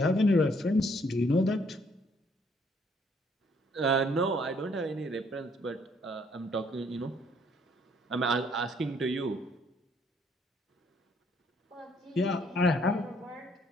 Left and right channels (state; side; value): normal; both; correlation 0.66